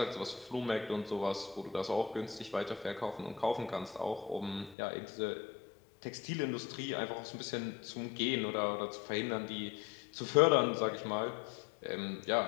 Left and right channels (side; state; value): right; drops out; at 4.8 s